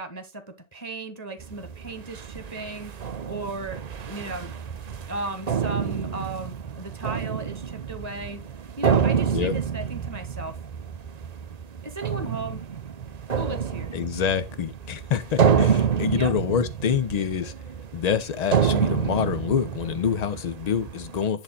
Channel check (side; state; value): right; late; 1.9 ms